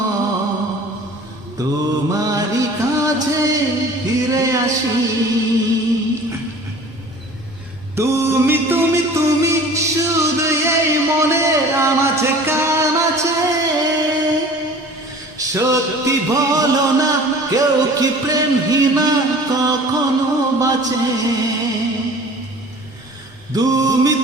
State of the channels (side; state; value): both; normal; correlation 0.45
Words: তোমারই কাছে ফিরে আসি। তুমি তুমি তুমি শুধু এই মনের আমাছে কান আছে, সত্যি বলো না কেউ কি প্রেমহীনা কখনো বাঁচে। তুমি